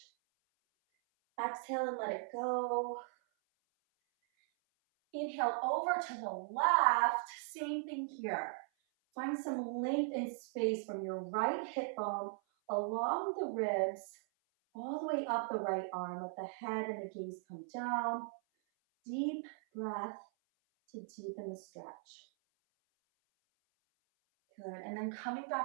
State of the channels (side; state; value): left; silent; 52 dB below the other